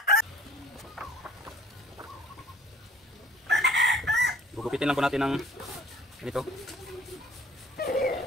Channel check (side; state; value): both; normal; correlation 0.53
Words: gugupitin lang po natin ng ganito.